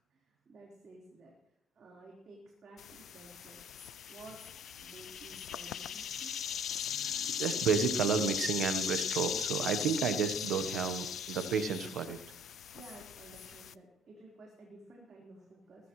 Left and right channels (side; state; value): both; normal; correlation 0.53